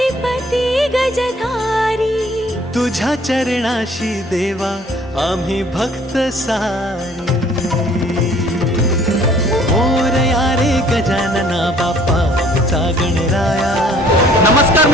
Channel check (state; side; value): normal; both; correlation 0.57